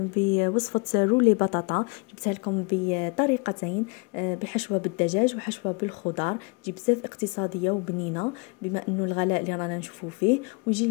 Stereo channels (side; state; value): right; quieter; 31.6 dB